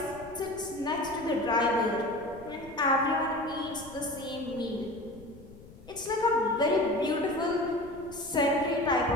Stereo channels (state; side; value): noise; left; rumble, 20 dB below the sound